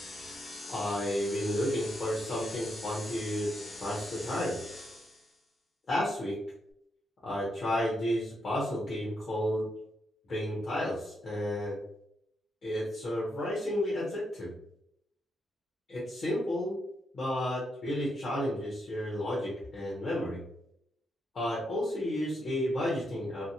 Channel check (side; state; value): both; normal; correlation 0.81